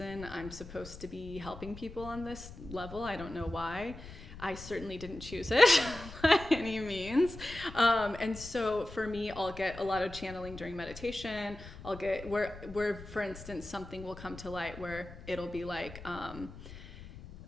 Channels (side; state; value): left; noise; rumble, 14 dB below the sound